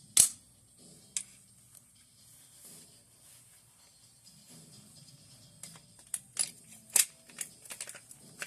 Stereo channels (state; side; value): identical; both; correlation 1.00